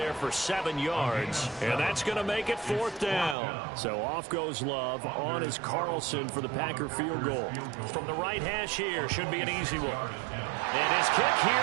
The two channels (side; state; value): left; drops out; at 3.4 s